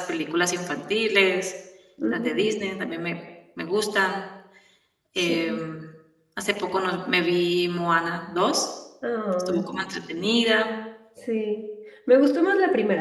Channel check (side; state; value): both; identical; correlation 1.00